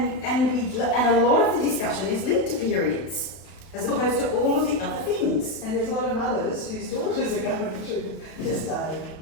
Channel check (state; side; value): late; right; 31 ms